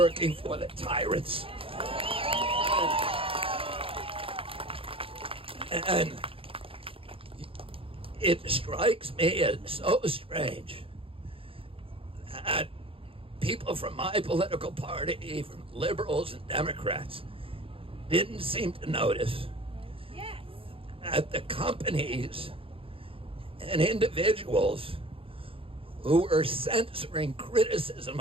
for the tyrants. And it strikes me as so strange that people from my political party, from liberals and Democrats, didn't seem to notice that the companies and individuals who were censoring criticism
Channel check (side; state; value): left; late; 0.27 ms